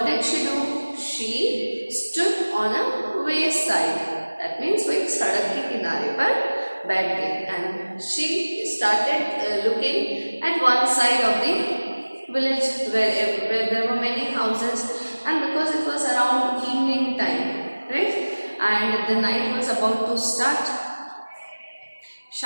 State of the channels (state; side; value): inverted; both; correlation -1.00